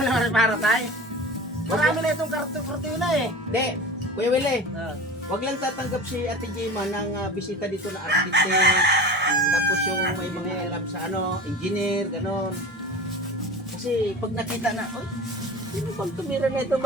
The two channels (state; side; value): normal; both; correlation 0.35